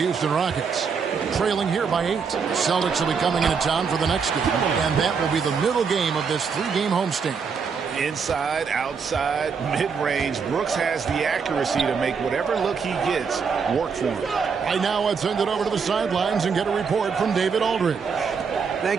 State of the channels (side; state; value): left; quieter; 5.9 dB